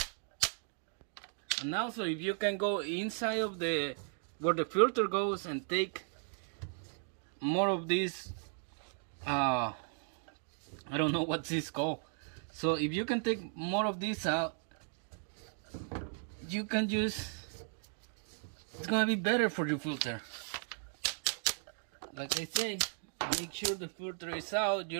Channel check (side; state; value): left; silent; 54 dB below the other